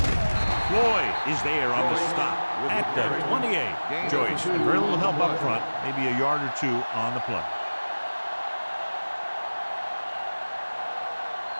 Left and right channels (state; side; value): inverted; both; correlation -1.00